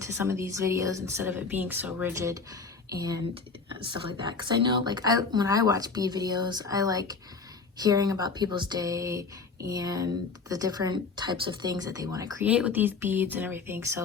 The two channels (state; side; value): quieter; right; 4.6 dB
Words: some of these videos instead of it being so rigid and stuff like that. Because I know, like, when I watch bead videos, I like hearing about people's day and the different types of things that they want to create with these beads and everything.